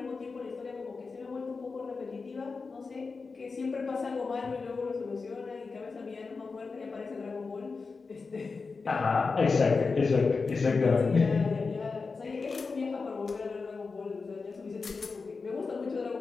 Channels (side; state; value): right; quieter; 4.5 dB